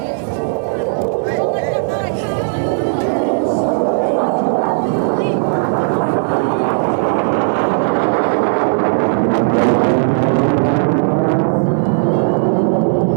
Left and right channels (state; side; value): silent; left; digital silence